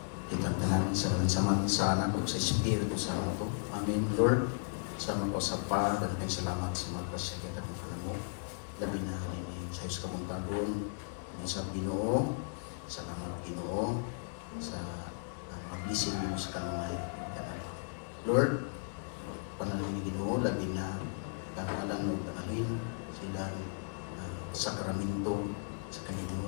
Itang tanan sa anak ko sa Espiritu sa ito. Amen, Lord. Sa mga kasapa, dagang salamat sa mga kasagyan ng mo. Labi na rin sa Diyos kamong pagod, sa Ginoo, sa mga Ginoo, sa mga blessing mo sa kanunay. Lord, panalangin ni Ginoo, labi na kamalang nagdaalin silang sakramento sa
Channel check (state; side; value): silent; right; 54 dB below the other